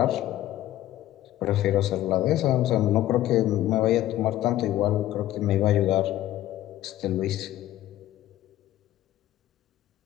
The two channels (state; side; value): quieter; right; 14.0 dB